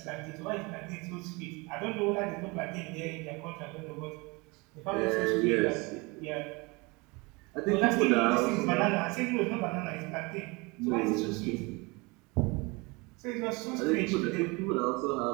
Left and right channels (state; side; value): quieter; left; 26.6 dB